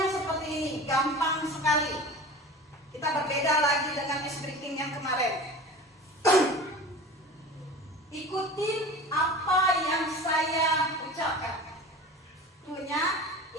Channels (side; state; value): both; normal; correlation 0.36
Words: seperti ini, gampang sekali. Kita berbeda lagi dengan ice breaking yang kemarin. Ikutin apa yang saya ucapkan. Krunya,